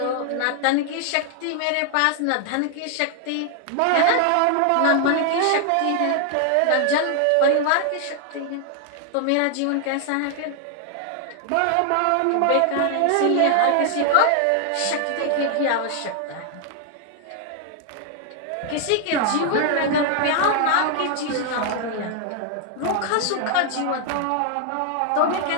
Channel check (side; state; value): both; different; correlation 0.00